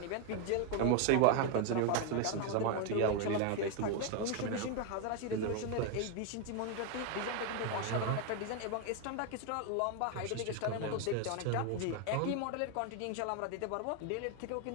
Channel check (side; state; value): both; different; correlation 0.01